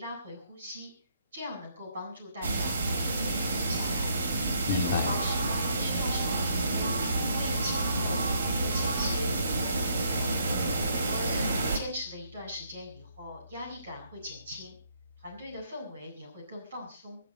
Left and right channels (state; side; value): inverted; both; correlation -0.70